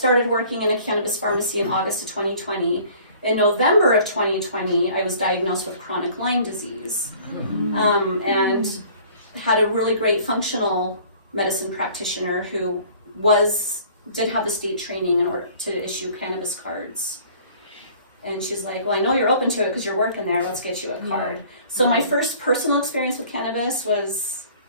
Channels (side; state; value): both; inverted; correlation -0.52